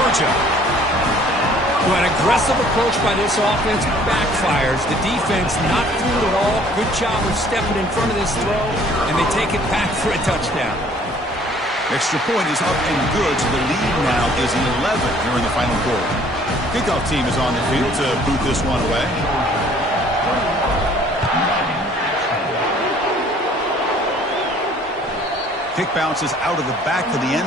Well, an aggressive approach by this offense backfires. The defense not fooled at all. Good job of stepping in front of this throw, and they take it back for a touchdown. Extra point is up and good, so the lead now is 11 here in the final quarter. Kickoff team is on the field to boot this one away. Kick bounces out of the back of the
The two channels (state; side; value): normal; both; correlation 0.56